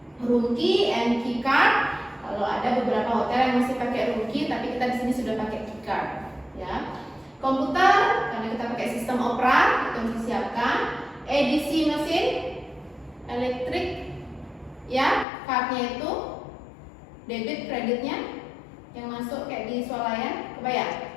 Room key and key card. Kalau ada beberapa hotel yang masih pakai room key, tapi kita di sini sudah pakai key card, ya. Komputer, karena kita pakai sistem Opera, itu harus disiapkan. EDC mesin, elektrik, ya, cardnya itu debit kreditnya yang masuk kayak di swalayan,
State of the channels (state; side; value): drops out; right; at 15.2 s